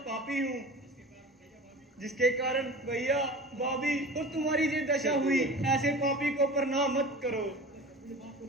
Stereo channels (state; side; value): normal; both; correlation 0.36